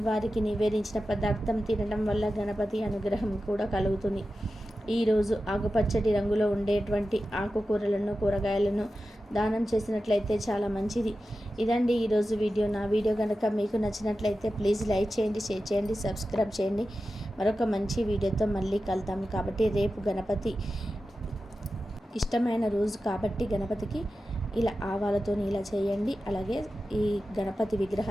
నివేదించిన పదార్థం తినడం వల్ల గణపతి అనుగ్రహం కూడా కలుగుతుంది. ఈరోజు ఆకుపచ్చటి రంగులో ఉండేటువంటి ఆకుకూరలను కూరగాయలను దానం చేసినట్లయితే చాలా మంచిది. ఇదండి ఈరోజు వీడియో. నా వీడియో కనుక మీకు నచ్చినట్లయితే ప్లీజ్ లైక్ చేయండి, షేర్ చేయండి, సబ్స్క్రైబ్ చేయండి. మరొక మంచి వీడియోతో మళ్ళీ కలుద్దాం. కాబట్టి రేపు గణపతి ఇష్టమైన రోజు కాబట్టి గణపతికి ఇలా ఆవాలతో ఇలా చేయండి. అలాగే ఈ గణపతి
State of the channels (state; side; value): normal; both; correlation 0.93